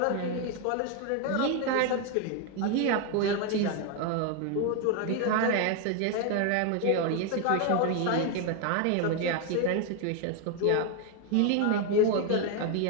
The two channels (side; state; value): both; different; correlation 0.01